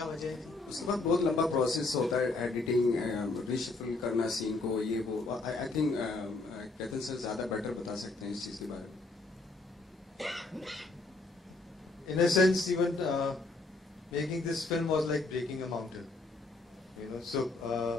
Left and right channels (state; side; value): quieter; right; 3.4 dB